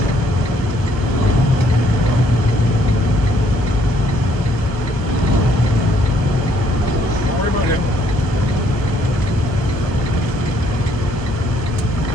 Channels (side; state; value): both; normal; correlation 0.67